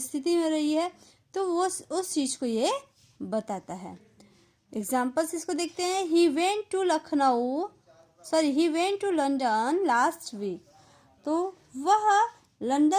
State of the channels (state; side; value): identical; both; correlation 1.00